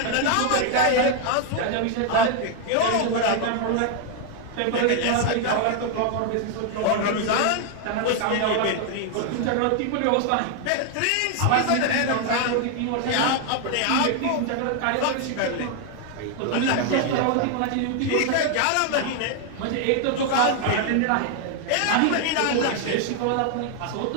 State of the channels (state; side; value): different; both; correlation 0.00